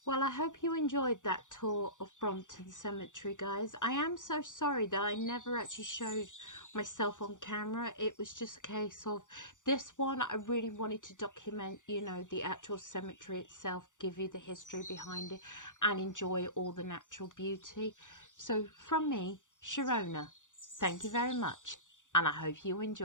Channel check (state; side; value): late; right; 0.86 ms